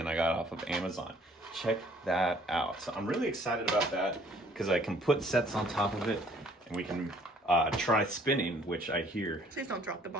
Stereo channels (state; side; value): normal; both; correlation 0.59